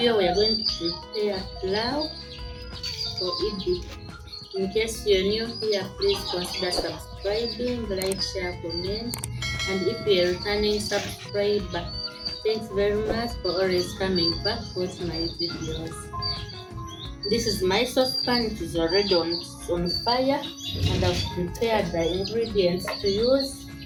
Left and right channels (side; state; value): both; identical; correlation 1.00